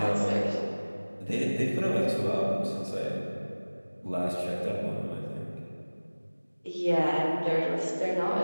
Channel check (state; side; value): inverted; both; correlation -1.00